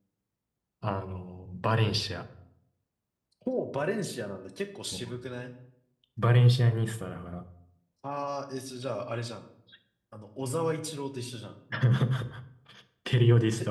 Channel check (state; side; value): identical; both; correlation 1.00